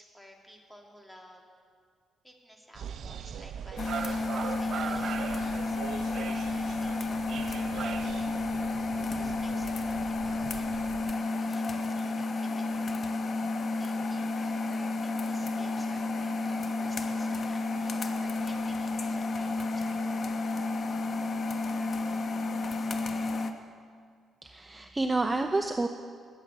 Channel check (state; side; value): normal; both; correlation 0.88